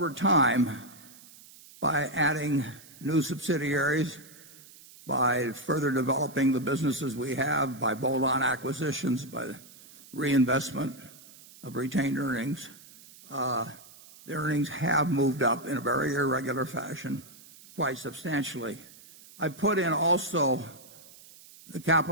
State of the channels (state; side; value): noise; right; hiss, 21 dB below the sound